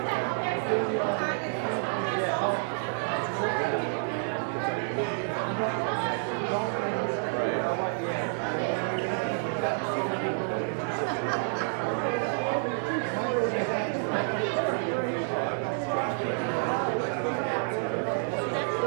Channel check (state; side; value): silent; left; 59 dB below the other